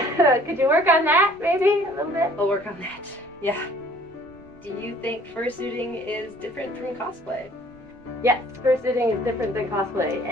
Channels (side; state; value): right; noise; rumble, 26 dB below the sound